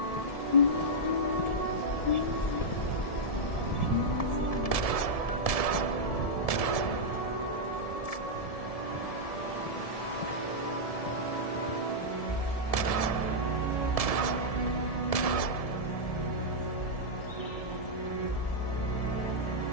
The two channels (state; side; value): late; right; 1.7 ms